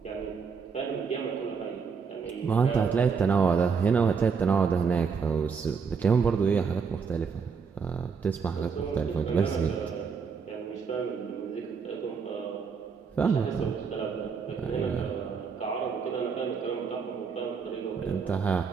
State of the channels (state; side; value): quieter; left; 5.8 dB